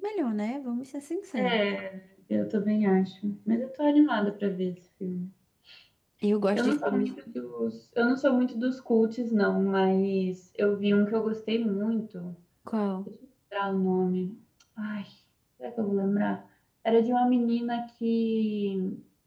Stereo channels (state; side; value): identical; both; correlation 1.00